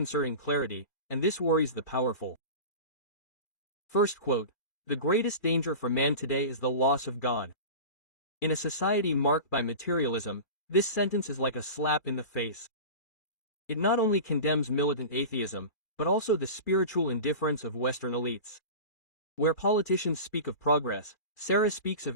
clarity, and this worries the powerful. First quote, "The greatest danger for man today is the loss of God." In a society marked by materialism, this sentence is like a slap in the face. It not only condemns militant atheism, but also the spiritual indifference of Western elites. Where politicians speak of progress, Sarah speaks of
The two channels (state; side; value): late; right; 2.4 ms